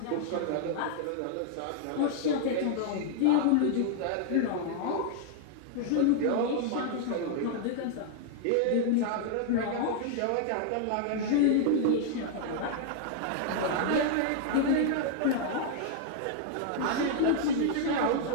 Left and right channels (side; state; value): both; different; correlation -0.01